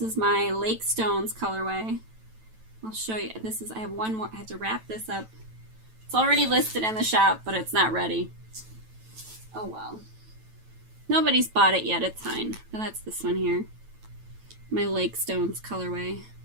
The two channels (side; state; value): left; late; 9.1 ms